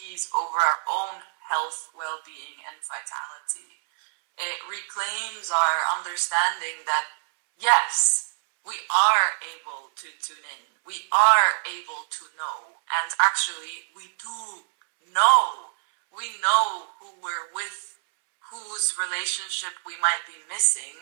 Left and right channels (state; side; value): silent; left; 61 dB below the other